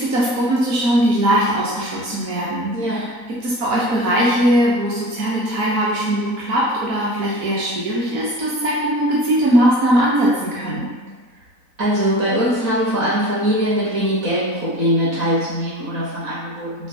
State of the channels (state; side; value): late; left; 4.0 ms